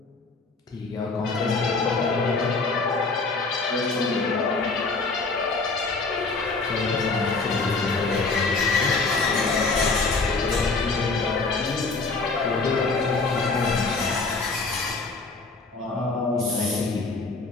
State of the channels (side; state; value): right; quieter; 3.9 dB